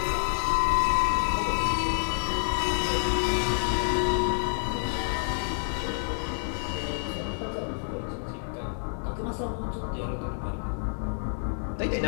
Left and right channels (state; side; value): silent; right; digital silence